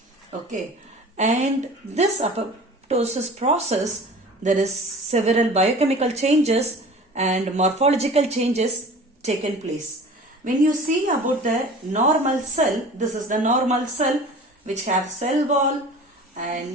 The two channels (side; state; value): both; normal; correlation 0.41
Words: Okay, and this apoptosis process, there is several biochemical changes and morphological changes taken place. When you see about the normal cell, this is the normal cell which have cell wall